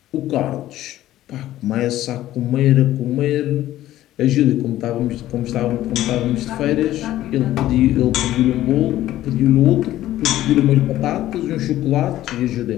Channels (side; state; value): right; quieter; 14.1 dB